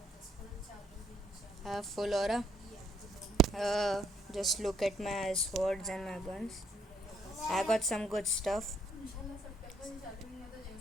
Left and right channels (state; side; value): normal; both; correlation 0.69